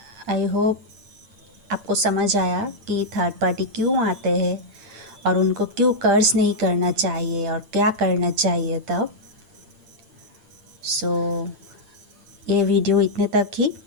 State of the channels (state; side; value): late; left; 8.9 ms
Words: आई होप आपको समझ आया कि थर्ड पार्टी क्यों आते हैं और उनको क्यों कर्ज नहीं करना चाहिए और क्या करना चाहिए तब। सो ये वीडियो इतने तक ही।